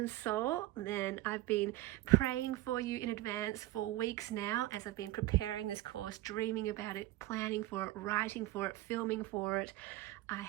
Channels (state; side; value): quieter; left; 16.8 dB